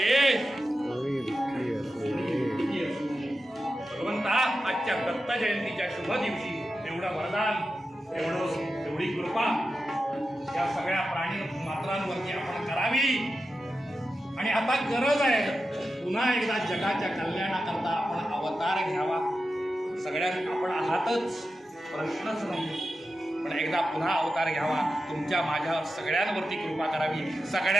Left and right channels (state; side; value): normal; both; correlation 0.91